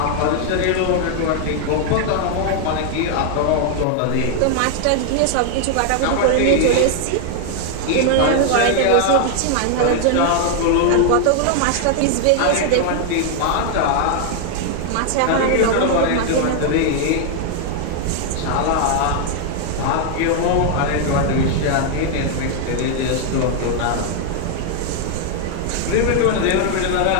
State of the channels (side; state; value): both; different; correlation 0.00